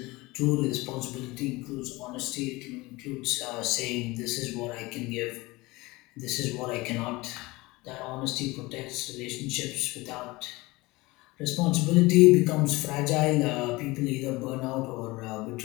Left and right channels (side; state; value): right; quieter; 22.0 dB